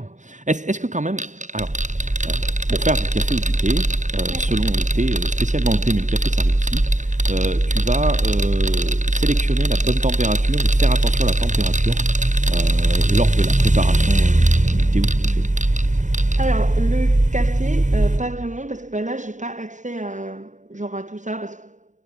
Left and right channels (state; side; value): late; left; 0.36 ms